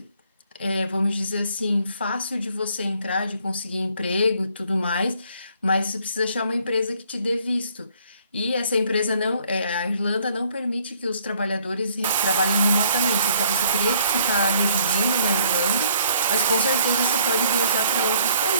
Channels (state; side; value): inverted; both; correlation -0.63